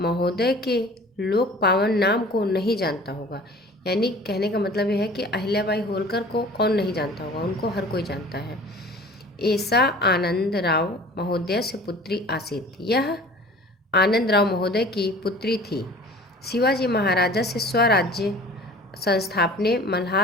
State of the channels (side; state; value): both; normal; correlation 0.44